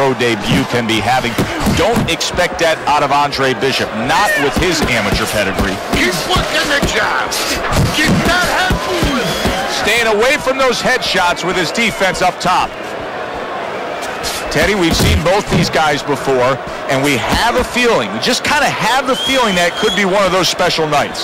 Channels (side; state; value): both; identical; correlation 1.00